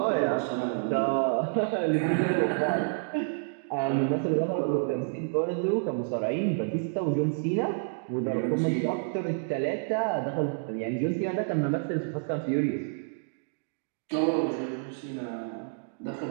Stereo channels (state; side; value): silent; left; digital silence